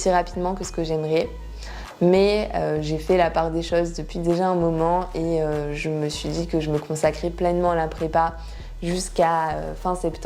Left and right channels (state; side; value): identical; both; correlation 1.00